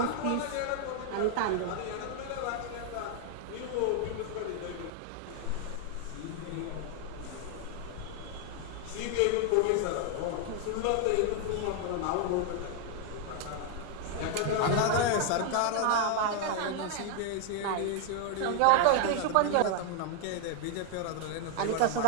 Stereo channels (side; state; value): both; different; correlation 0.00